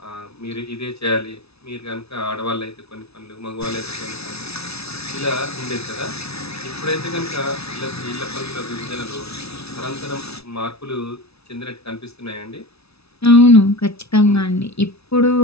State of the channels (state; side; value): late; right; 0.79 ms